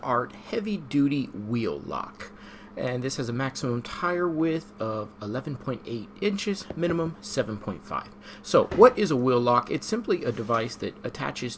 Heavy Duty Wheel Lock. And this has a maximum tire width of 11.8 inches, minimum 7.5. So what is a wheel lock? It's simply a device that attaches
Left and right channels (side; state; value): both; identical; correlation 1.00